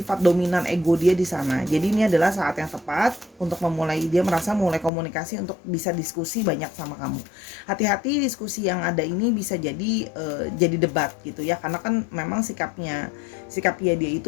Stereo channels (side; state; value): right; drops out; at 4.9 s